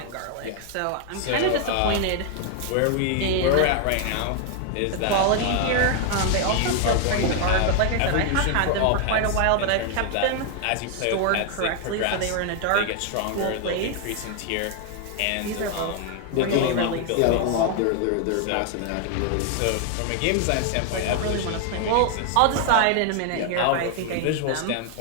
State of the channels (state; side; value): different; both; correlation 0.00